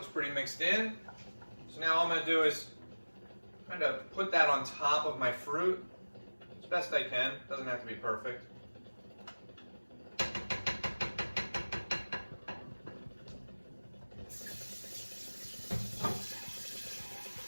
pretty mixed in. So now all I'm going to do is kind of put that on top of my fruit as best I can. Doesn't have to be perfect.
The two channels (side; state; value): both; inverted; correlation -1.00